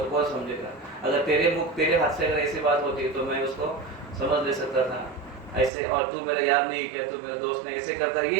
कौन समझेगा। अगर तेरे हाथ से अगर ऐसी बात होती तो मैं उसको समझ ले सकता था ऐसे, और तू मेरा यार नहीं किया, तू मेरे दोस्त ने ऐसे करता,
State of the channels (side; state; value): left; drops out; at 5.7 s